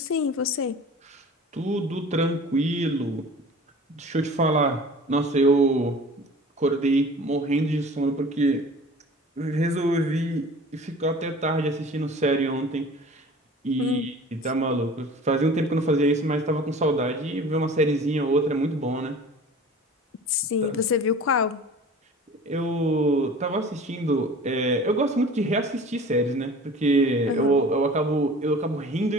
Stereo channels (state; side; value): normal; both; correlation 0.43